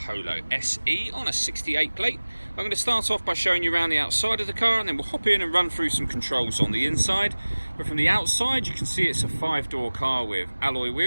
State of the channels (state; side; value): inverted; both; correlation -1.00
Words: SE on a 68 plate. I'm going to start off by showing you around the outside of the car, and then we'll hop in and run through some controls on the inside. But from the outside you can see it's a 5-door car with alloy